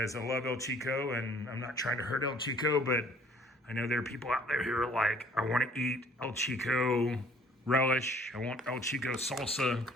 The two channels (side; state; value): both; normal; correlation 0.56